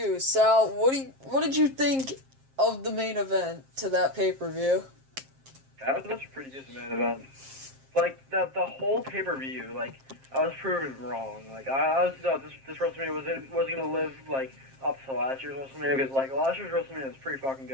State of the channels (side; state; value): left; late; 7.5 ms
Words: Sal. What did you think of the main event to that pay-per-view? That was a pretty decent main event. Like, the whole pay-per-view, like, I was proven wrong. Like, I honestly thought this WrestleMania wasn't going to live, like, up to last year's WrestleMania, because, like, last year's WrestleMania was pretty fucking